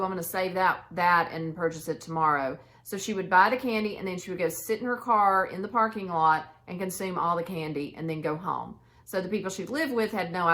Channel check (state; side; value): identical; both; correlation 1.00